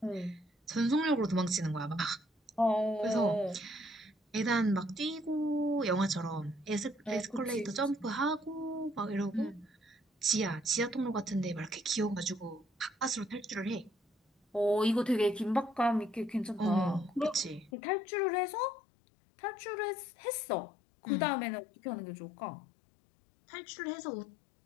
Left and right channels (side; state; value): right; drops out; at 17.7 s